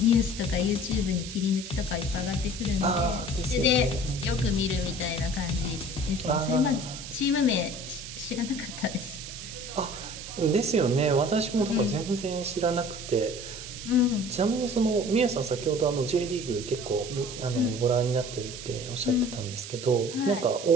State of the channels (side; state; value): right; noise; hiss, 11 dB below the sound